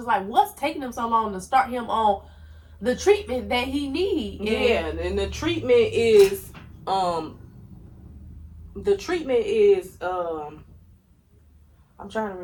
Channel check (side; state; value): both; identical; correlation 1.00